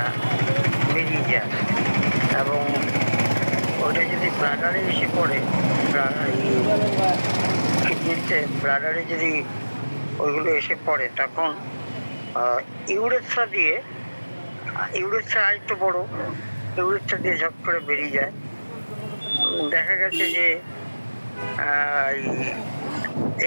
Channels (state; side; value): inverted; both; correlation -1.00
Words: বেরিয়ে যায়, এবং ওটা যদি ব্লাডারে এসে পড়ে, কিডনিতে ব্লাডারে যদি ওইগুলো এসে পড়ে তখন ইউরেথ্রা দিয়ে, ইউরেথ্রা আরেকটু বড়, ইউরেথ্রা দিয়ে ঝপ করে বেরিয়ে যায়। দেখা গেছে যে